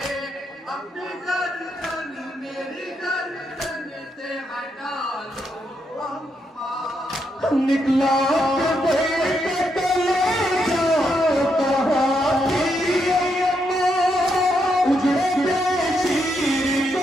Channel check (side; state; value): both; normal; correlation 0.80